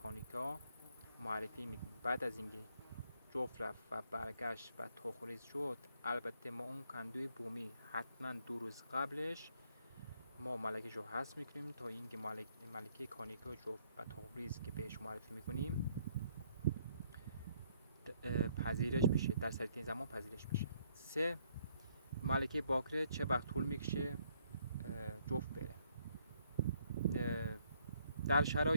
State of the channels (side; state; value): both; inverted; correlation -0.69